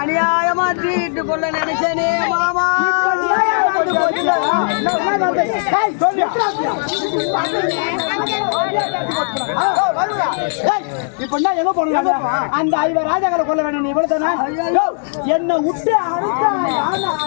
தீட்டு கொள்ள நினைச்சேனே மாமா. இப்ப எங்க போன அந்த ஐவர் ராஜாக்களை கொல்ல வேணும். நீ இவ்வளவுதானே என்ன விட்டு அனுப்பிச்சா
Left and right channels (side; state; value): right; silent; 65 dB below the other